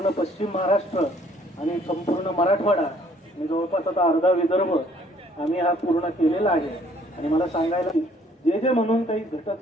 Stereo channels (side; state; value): both; normal; correlation 0.61